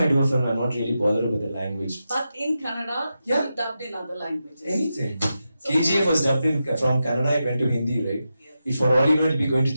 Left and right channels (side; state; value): both; inverted; correlation -0.89